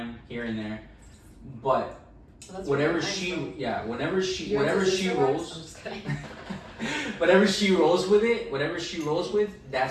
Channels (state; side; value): identical; both; correlation 1.00